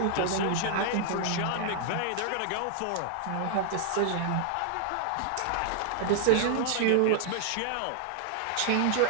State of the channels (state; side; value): different; both; correlation -0.01